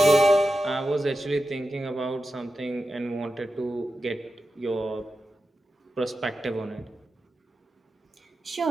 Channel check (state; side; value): normal; both; correlation 0.91